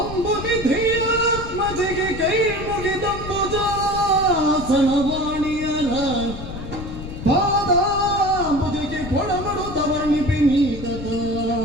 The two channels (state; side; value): noise; left; rumble, 10 dB below the sound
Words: ಕೈ ಮುಗಿದಂಬುಜ ಸನವಾಣಿಯರ ಪಾದಾಂಬುಜಿಗೆ ಕೊಡಮಡುತ್ತವರ್ಣಿಪಿ ನೀತತ